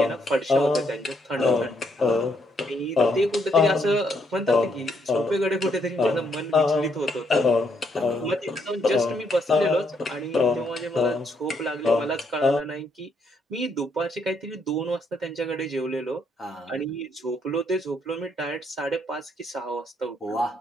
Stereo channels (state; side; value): normal; both; correlation 0.73